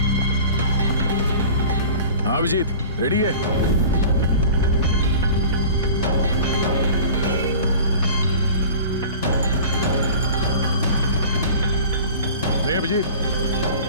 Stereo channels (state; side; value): inverted; both; correlation -0.40